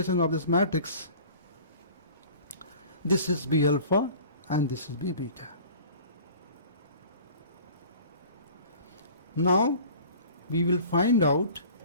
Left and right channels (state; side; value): inverted; both; correlation -0.45